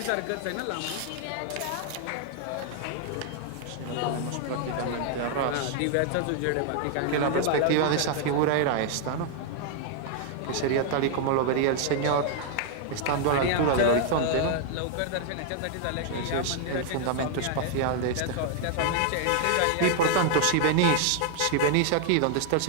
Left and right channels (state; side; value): different; both; correlation 0.00